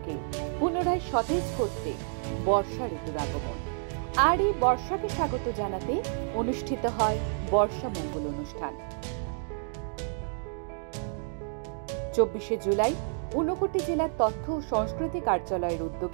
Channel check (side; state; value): left; silent; 58 dB below the other